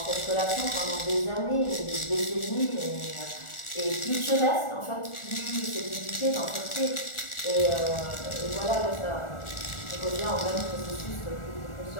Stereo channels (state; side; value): late; right; 1.4 ms